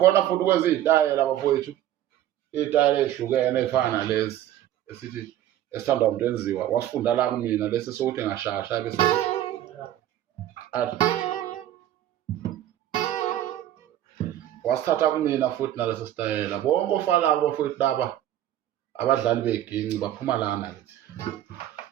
futhi ukwenza izitayela bafowethu, izitayela ezihlukene ezifana nalezi esithi esithandwa umuntu enziwa wasifunda la kumina lesi sokuthi ngashasha bese athi wasithatha kumina futhi naleso sitayela. Bonke ofalabo bafowethu laba abadlali beginci baphuma lana kithi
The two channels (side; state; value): left; quieter; 12.4 dB